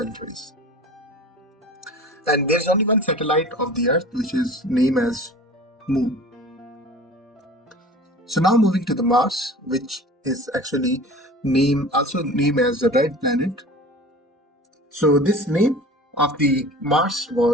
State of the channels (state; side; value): normal; both; correlation 0.40